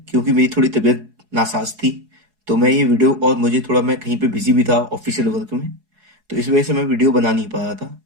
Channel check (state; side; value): late; left; 4.7 ms